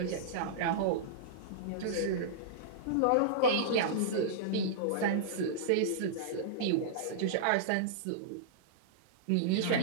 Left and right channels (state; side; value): different; both; correlation -0.02